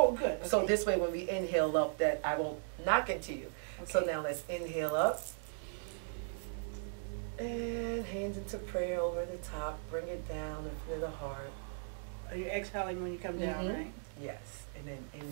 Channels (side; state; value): left; silent; digital silence